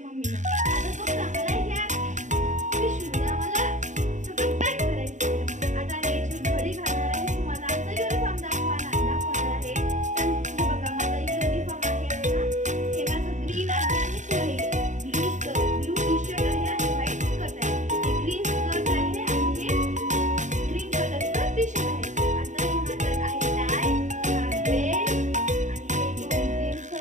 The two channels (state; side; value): late; left; 0.35 ms